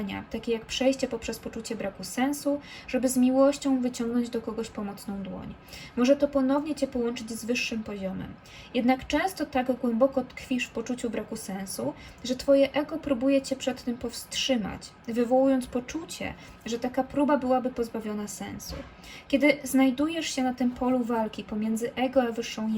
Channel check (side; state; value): both; identical; correlation 1.00